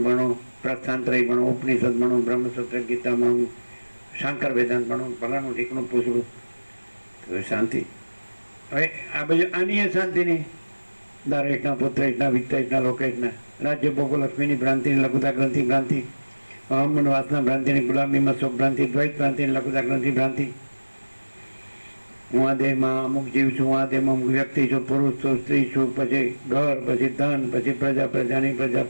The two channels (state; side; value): inverted; both; correlation -1.00